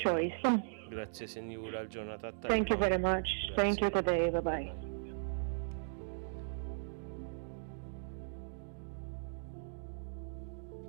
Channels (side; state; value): left; silent; digital silence